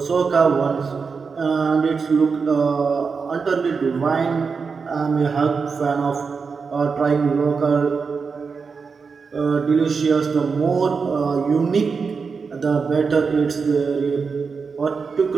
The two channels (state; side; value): quieter; left; 5.2 dB